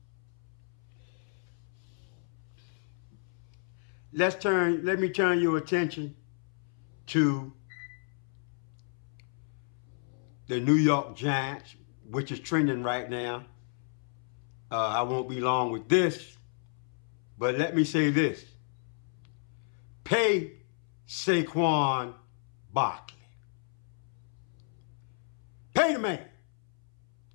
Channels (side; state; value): right; silent; 56 dB below the other